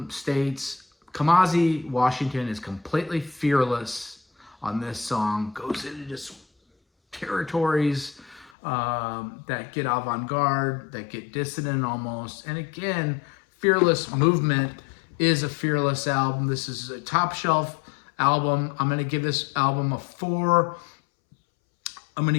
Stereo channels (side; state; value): right; drops out; at 8.5 s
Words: states, Kamasi Washington is completely fearless on this song. Goes into just territories that get avant-garde, that get dissonant almost. And again, Fearless Movement is a fearless album. This is a top shelf album. I'm going to give this album a 4. I'm going to